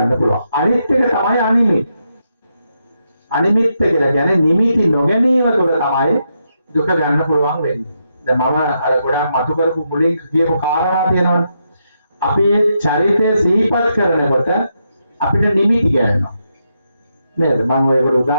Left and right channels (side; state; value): both; inverted; correlation -0.81